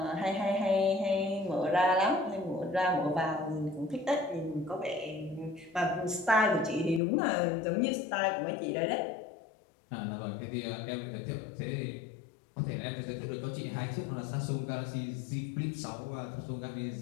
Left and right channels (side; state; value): right; drops out; at 7.0 s